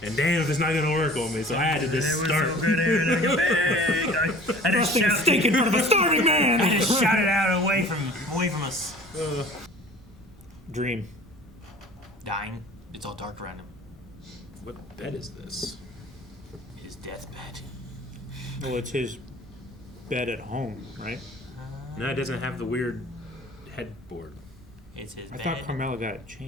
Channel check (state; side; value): normal; both; correlation 0.45